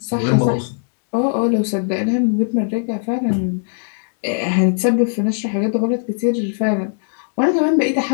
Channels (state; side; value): silent; right; digital silence